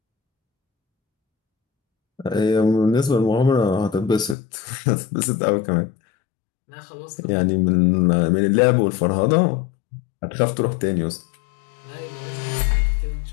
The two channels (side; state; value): right; drops out; at 4.4 s